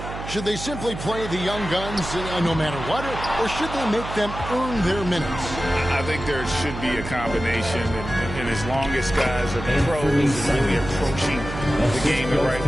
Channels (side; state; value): right; noise; hum, 9 dB below the sound